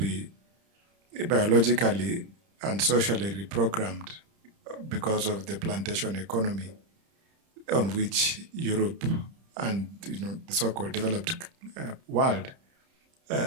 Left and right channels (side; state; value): left; late; 30 ms